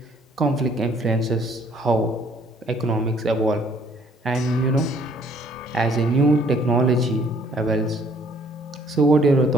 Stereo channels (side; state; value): both; normal; correlation 0.61